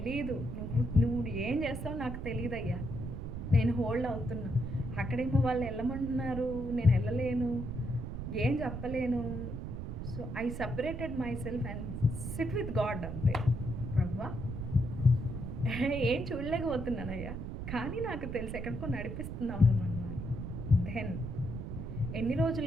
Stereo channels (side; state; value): right; noise; rumble, 6 dB below the sound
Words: నువ్వు ఏం చేస్తావు నాకు తెలియదయ్యా, నేను హోల్డ్ అవుతున్నా. అక్కడేమో వాళ్ళు వెళ్ళమంటున్నారు, నేను వెళ్ళలేను, ఏం చెప్పలేను. So I separated my self and SIT with God అంతే. ప్రభువా ఏం చూడలేకపోతున్నానయ్యా, కానీ నాకు తెలుసు ఎక్కడికో నడిపిస్తున్నాను నన్ను అని. దెన్ ఎన్ని రోజులు